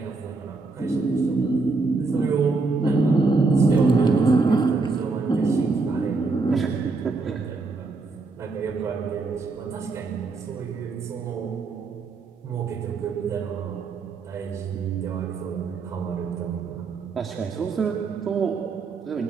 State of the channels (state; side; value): quieter; left; 4.0 dB